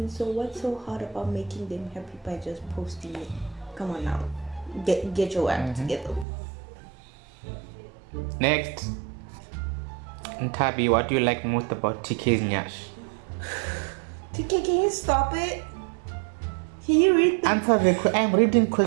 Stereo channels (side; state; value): left; drops out; at 6.2 s